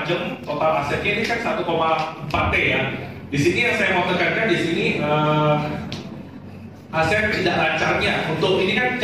macam, total asetnya ini kan 1,4 T ya. Di sini yang saya mau tekankan di sini aset tidak lancarnya. Untuk ini kan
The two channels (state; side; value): identical; both; correlation 1.00